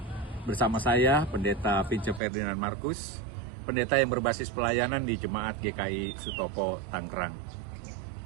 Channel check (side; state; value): left; drops out; at 2.2 s